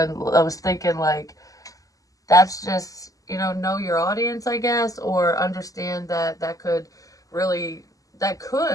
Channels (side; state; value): right; late; 0.17 ms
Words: thinking like, that's just, know your audience, I guess, or understand that really, that